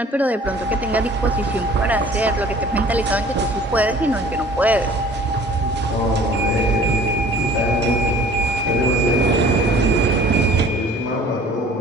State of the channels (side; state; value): both; normal; correlation 0.49